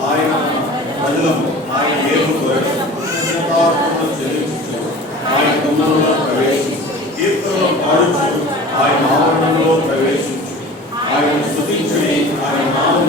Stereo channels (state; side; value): normal; both; correlation 0.40